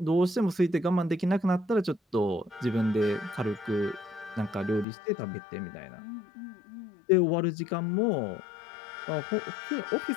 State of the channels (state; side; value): drops out; right; at 4.9 s